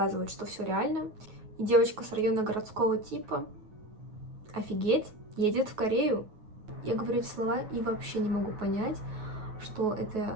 что все реально. И девочка с района городского типа, офигеть, едет в Корею. Я говорю эти слова и вообще не могу понять, что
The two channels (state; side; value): late; left; 9.3 ms